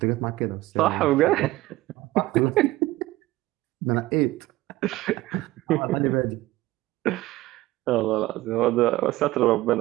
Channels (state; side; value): quieter; left; 17.6 dB